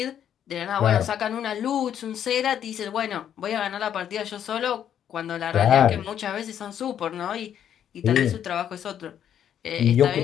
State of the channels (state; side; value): quieter; right; 9.6 dB